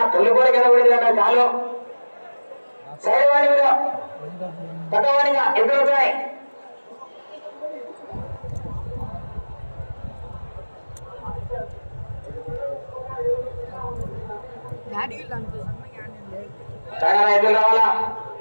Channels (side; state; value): both; inverted; correlation -1.00